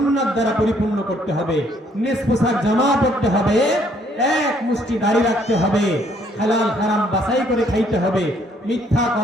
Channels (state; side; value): normal; both; correlation 0.66